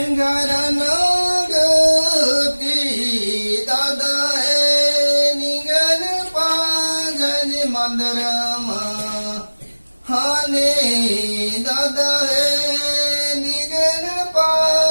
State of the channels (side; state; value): both; inverted; correlation -1.00